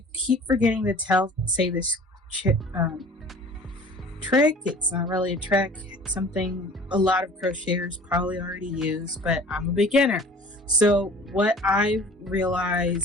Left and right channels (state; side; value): normal; both; correlation 0.45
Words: keep forgetting to say this trick. It's not really a trick. It's something a lot of crocheters probably already use, but I'm a beginner. So what I've